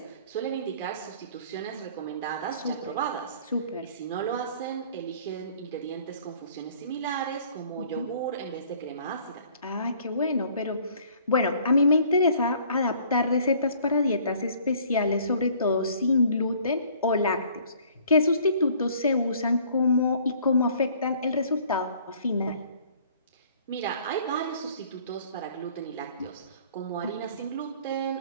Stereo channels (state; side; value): inverted; both; correlation -0.56